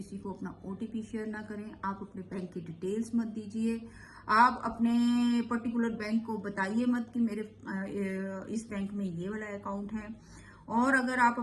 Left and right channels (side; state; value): both; identical; correlation 1.00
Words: को अपना ओटीपी शेयर ना करें, आप अपने बैंक की डिटेल्स मत दीजिए, आप अपने पर्टिकुलर बैंक को बताइए मत कि मेरे इस बैंक में ये वाला अकाउंट है। और अगर आप